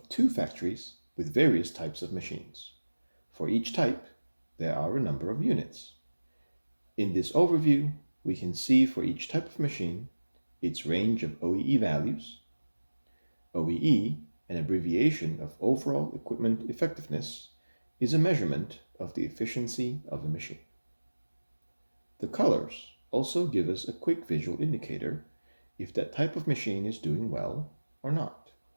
two factories with various types of machines. For each type, there are a number of units. In this overview, we can see for each type of machine its range of OEE values. OEE, an abbreviation of Overall Equipment Effectiveness, is a measurement of the efficiency of the machine. The colors also give us a quick visual indicator if that type of machine is doing well or not,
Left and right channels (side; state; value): both; inverted; correlation -1.00